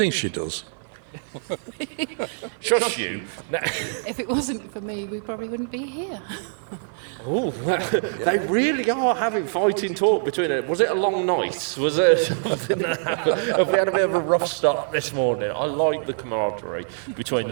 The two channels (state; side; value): silent; left; 56 dB below the other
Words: she does. Shush you. No. If it wasn't for me, we probably wouldn't be here. Oh, they really are having fighting talk between it. Was it a long night? Was it something that happened? Have we had a bit of a rough start this morning? I like the camaraderie between